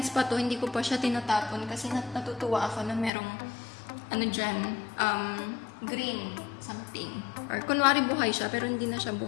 pa to, hindi ko pa siya tinatapon kasi natutuwa ako na merong, dyan, green something. Or, kunwari buhay siya, pero hindi na siya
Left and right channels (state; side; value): drops out; right; at 3.1 s